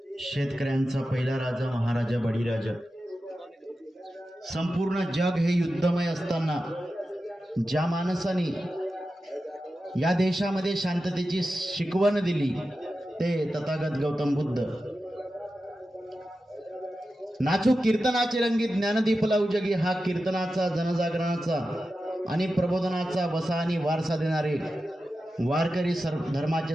शेतकऱ्यांचा पहिला राजा महाराजा बळीराजा. संपूर्ण जग हे युद्धमय असताना ज्या माणसाने या देशामध्ये शांततेची शिकवण दिली ते तथागत गौतम बुद्ध. नाचू कीर्तनाचे रंगी ज्ञानदीप लावू जगी हा कीर्तनाचा, जनजागरणाचा आणि प्रबोधनाचा वसा आणि वारसा देणारे वारकरी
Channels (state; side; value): normal; both; correlation 0.92